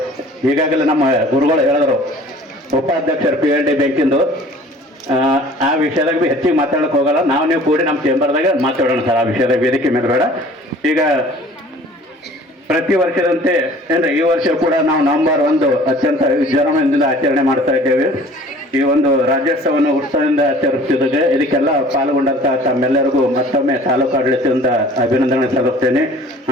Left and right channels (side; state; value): both; normal; correlation 0.49